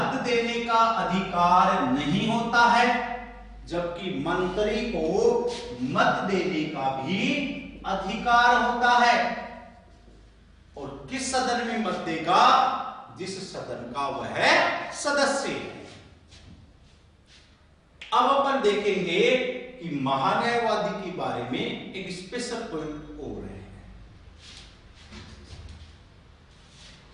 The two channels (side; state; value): both; identical; correlation 1.00